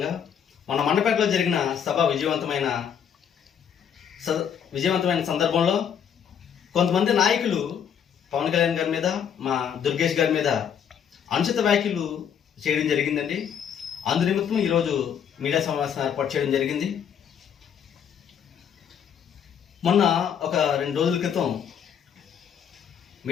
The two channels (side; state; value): right; quieter; 8.2 dB